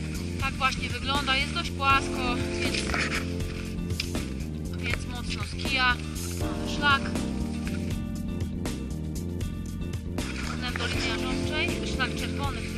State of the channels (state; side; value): identical; both; correlation 1.00